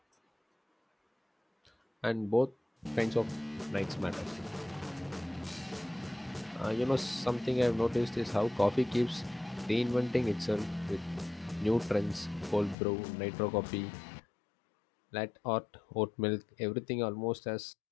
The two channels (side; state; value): right; drops out; at 12.8 s